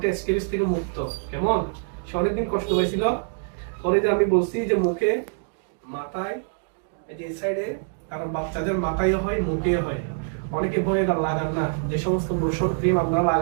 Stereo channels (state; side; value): silent; left; digital silence